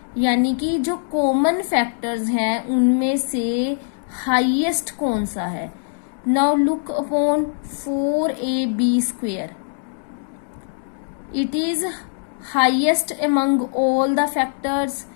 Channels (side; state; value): right; silent; digital silence